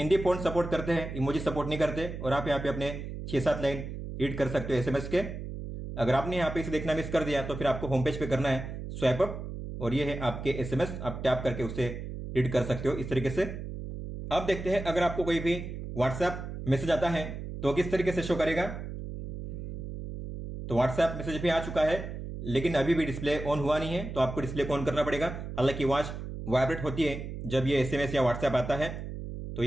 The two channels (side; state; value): right; noise; hum, 8 dB below the sound